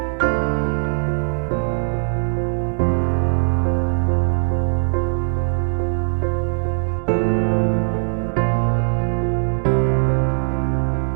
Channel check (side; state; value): left; silent; digital silence